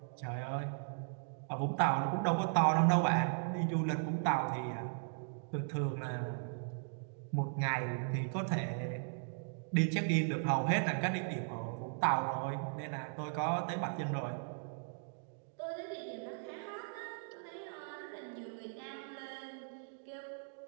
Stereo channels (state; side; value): silent; left; digital silence